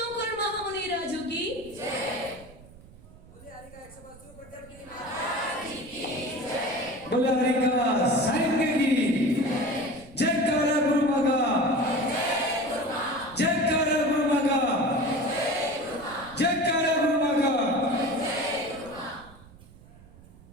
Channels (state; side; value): noise; right; rumble, 21 dB below the sound